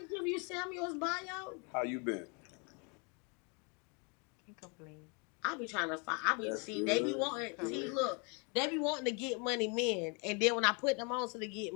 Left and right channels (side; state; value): right; quieter; 33.8 dB